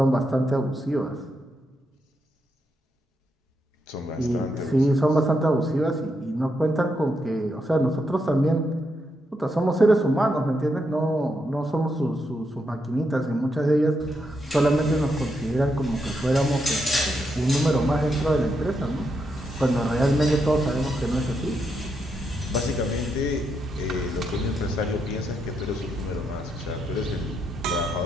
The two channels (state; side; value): normal; both; correlation 0.81